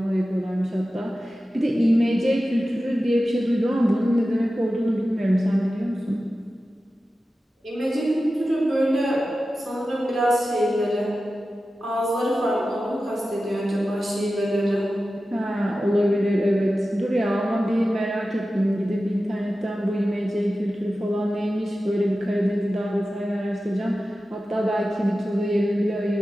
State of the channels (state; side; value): normal; both; correlation 0.94